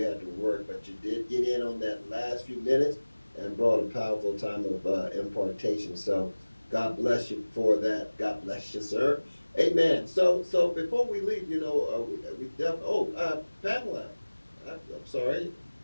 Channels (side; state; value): both; inverted; correlation -1.00